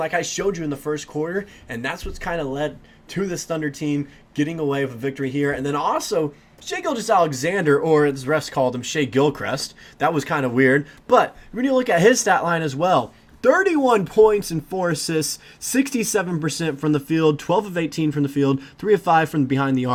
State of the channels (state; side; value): identical; both; correlation 1.00